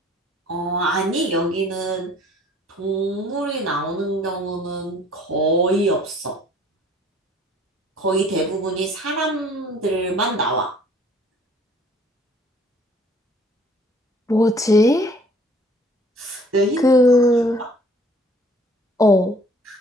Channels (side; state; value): both; normal; correlation 0.55